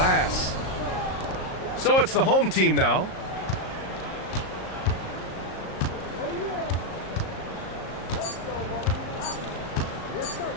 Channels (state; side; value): late; right; 38 ms